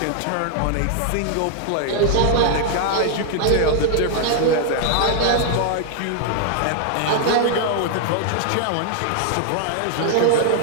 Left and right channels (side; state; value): both; different; correlation -0.01